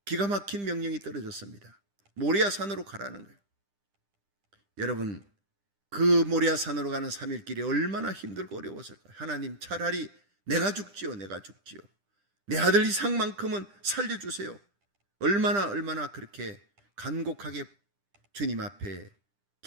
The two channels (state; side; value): late; left; 10 ms